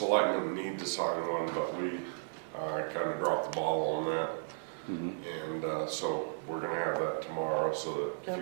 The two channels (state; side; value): silent; left; digital silence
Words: need to sign one, but we, kinda dropped the ball on that. Mhm. And, so we're gonna have that tomorrow, so that if